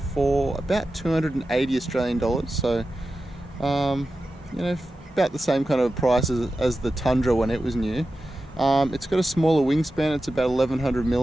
about 280 Australian dollars. So, you know, about the same kind of price as the Tundra when it was new. It's got a smaller wingspan. It's about 1100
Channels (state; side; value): normal; both; correlation 0.92